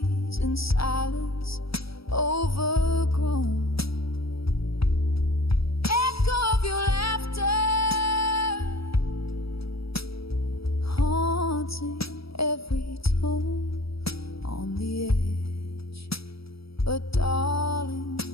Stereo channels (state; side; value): late; right; 0.76 ms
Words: in silence overgrown. Echo of your laughter haunting every tone on the edge. But darling,